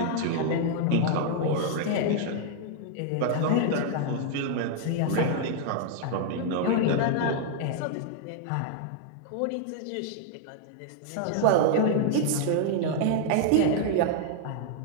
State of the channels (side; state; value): both; different; correlation 0.00